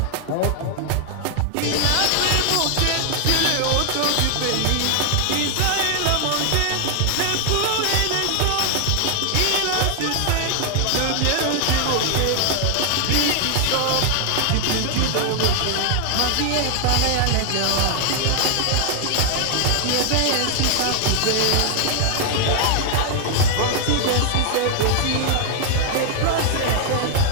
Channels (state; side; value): different; both; correlation 0.00